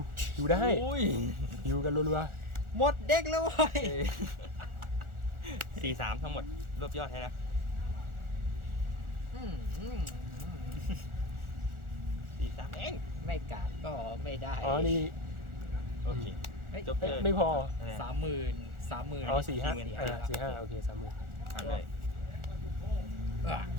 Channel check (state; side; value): late; left; 1.4 ms